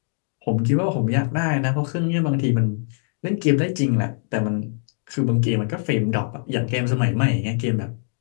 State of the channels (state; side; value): silent; right; digital silence